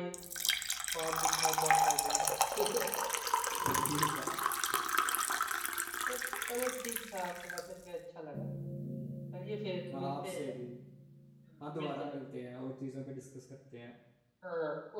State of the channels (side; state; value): both; identical; correlation 1.00